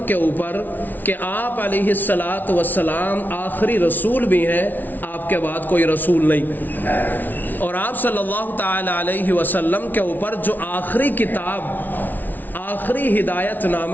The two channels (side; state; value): right; late; 0.084 ms